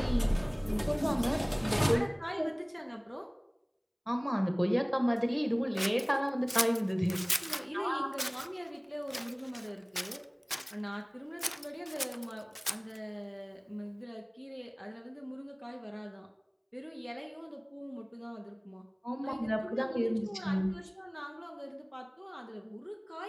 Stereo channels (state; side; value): identical; both; correlation 1.00